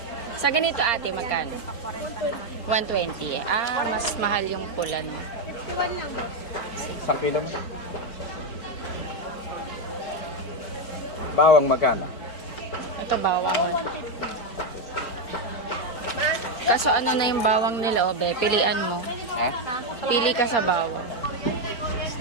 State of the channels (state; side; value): late; right; 4.1 ms